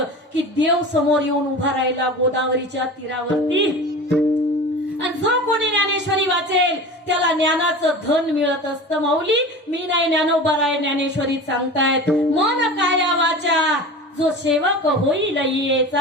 की देव समोर येऊन उभा राहिला गोदावरीच्या तीरावरती. आणि जो कोणी ज्ञानेश्वरी वाचेल त्याला ज्ञानाचं धन मिळत असतं. माऊली मी नाही ज्ञानोबा राय ज्ञानेश्वरी सांगतायत. मन काया वाचा जो सेवक होईल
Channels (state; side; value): normal; both; correlation 0.34